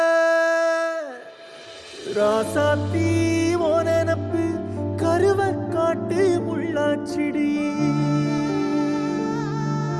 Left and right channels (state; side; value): identical; both; correlation 1.00